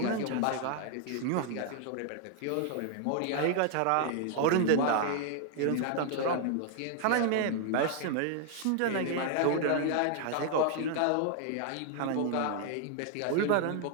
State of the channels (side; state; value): both; different; correlation 0.00